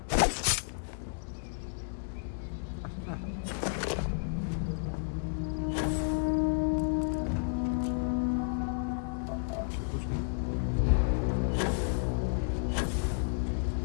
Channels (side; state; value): right; silent; digital silence